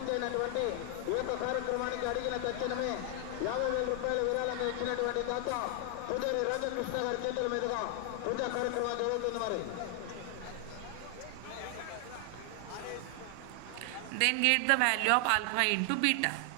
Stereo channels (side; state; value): both; different; correlation 0.00